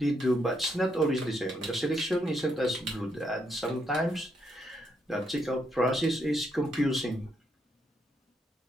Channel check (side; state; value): both; normal; correlation 0.77